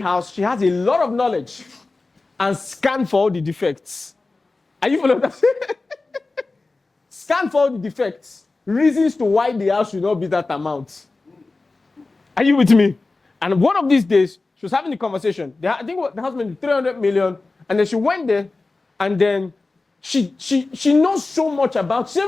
She has a lot of knowledge and scan for all the defects. Are you following that? Scan for all the defects. Reasons to why the house should not be that amount. Are you with me? And one of these days, she was having a conversation. I think the house made 300 million. And then she went there. And then she knows so much about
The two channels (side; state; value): right; quieter; 3.5 dB